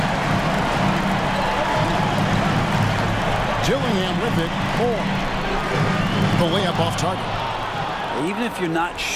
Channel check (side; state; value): both; identical; correlation 1.00